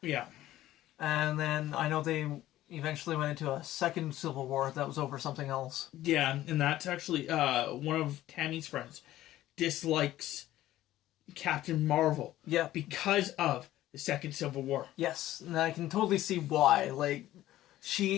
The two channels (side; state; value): right; quieter; 14.5 dB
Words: Yeah. And then I know they eventually went into a second Civil War that was over something else. Yeah, and that's actually one of Tammy's friends dislikes Captain Marvel. Yeah. Because of the second Civil War. Yes, and I can totally see why.